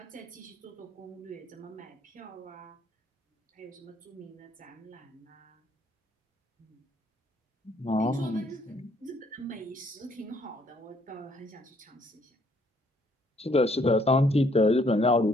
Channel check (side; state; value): both; normal; correlation 0.66